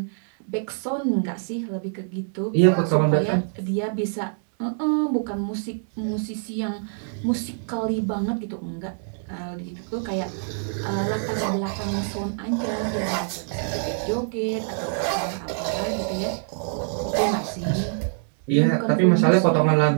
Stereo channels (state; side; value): silent; left; 62 dB below the other